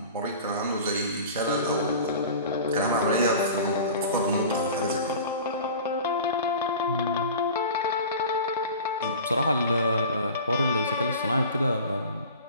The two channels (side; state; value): both; inverted; correlation -0.39